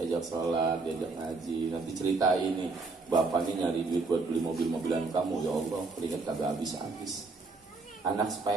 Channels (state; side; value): quieter; left; 3.8 dB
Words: sholat, diajak ngaji. Nanti cerita ini, bapak nih nyari duit buat beli mobil-mobilan kamu. Ya Allah, keringat kagak habis-habis. Anak